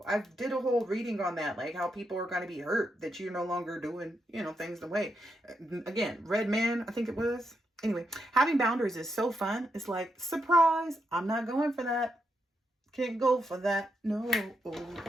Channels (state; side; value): normal; both; correlation 0.82